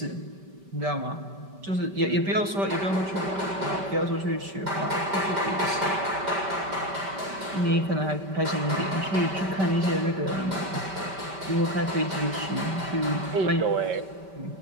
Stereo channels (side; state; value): left; late; 5.2 ms